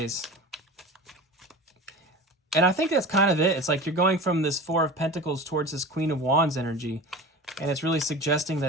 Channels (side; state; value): both; normal; correlation 0.34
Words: And I think that's kind of it. It's like you're going from this 4 of Pentacles towards this Queen of Wands energy, and it's really suggesting